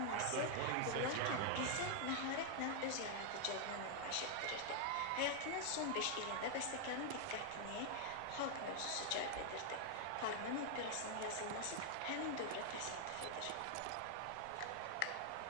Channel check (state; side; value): different; both; correlation 0.00